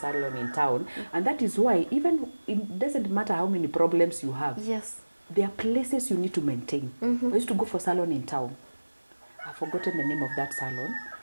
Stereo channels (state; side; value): inverted; both; correlation -1.00